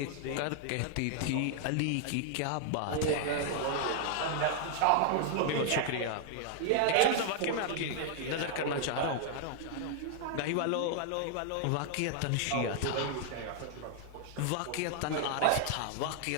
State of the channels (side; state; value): both; different; correlation 0.00